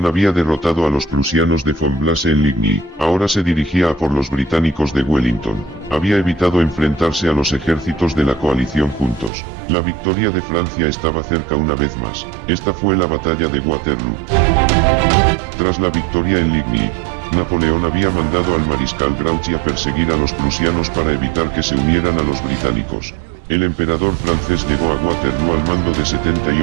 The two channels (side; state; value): left; drops out; at 9.3 s